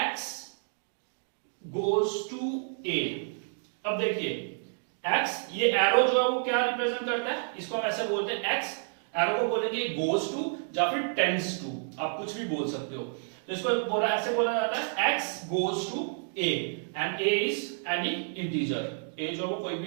goes to a। अब देखिए x, ये एरो जो है वो क्या रिप्रेजेंट करता है, इसको हम ऐसे बोलते हैं x, एरो को बोलेंगे गोज टू या फिर टेंड्स टू, आप कुछ भी बोल सकते हो। तो इसको ऐसे बोला जाता है x goes to a and a is any integer, a जो वो कोई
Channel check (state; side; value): silent; left; digital silence